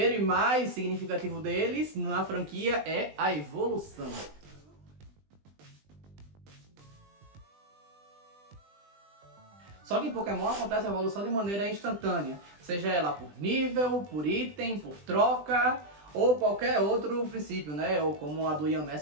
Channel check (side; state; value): left; late; 20 ms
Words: e mais significativo deles na franquia é a evolução. Só que em Pokémon acontece a evolução de maneira instantânea, seja ela por nível, por item, por troca ou qualquer outro princípio, né? Ou como a do